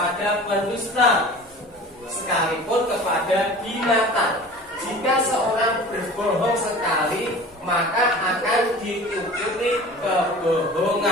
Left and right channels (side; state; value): both; normal; correlation 0.40